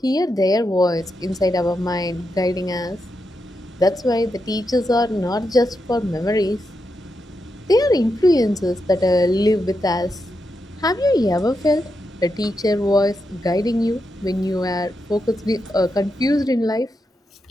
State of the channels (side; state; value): both; normal; correlation 0.85